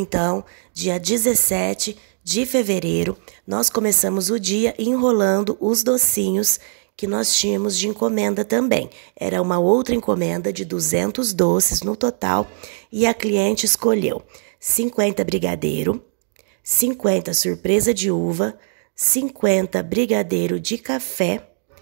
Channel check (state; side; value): silent; left; 65 dB below the other